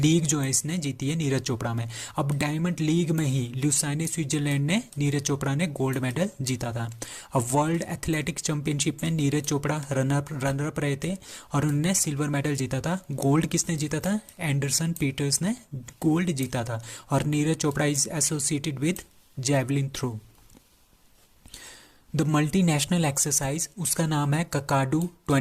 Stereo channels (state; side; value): identical; both; correlation 1.00